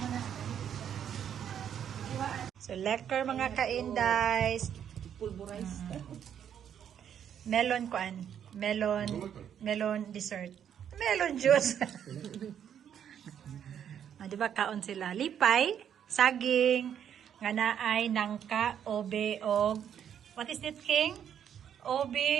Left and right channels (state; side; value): quieter; left; 9.0 dB